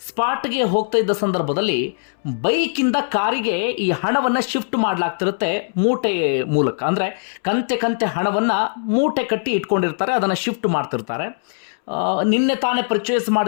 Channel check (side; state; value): right; silent; 65 dB below the other